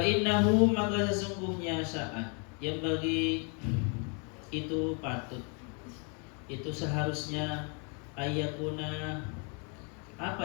maka sesungguhnya saat yang bagi itu patut, itu seharusnya ayakuna apa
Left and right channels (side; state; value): right; quieter; 36.8 dB